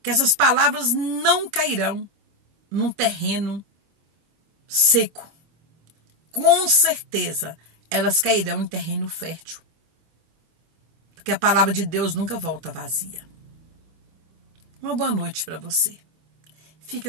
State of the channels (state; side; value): late; left; 25 ms